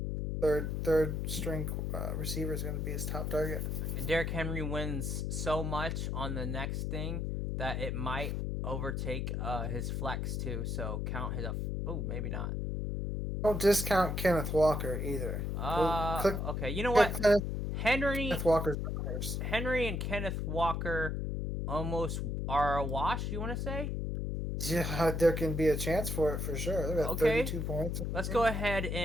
third string receiver is going to be his top target. Derrick Henry wins so much on the next thing that it might overtake his flex too. So count his. Oh, maybe not. Don't discount Kenneth Walker either. Okay. You know what? Kenneth Walker's first. Henry and Kenneth Walker almost are a wash. You want to say? Yeah, there can be a chance for it for sure. They're at 32 points. Let's go ahead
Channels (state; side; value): noise; left; hum, 1 dB below the sound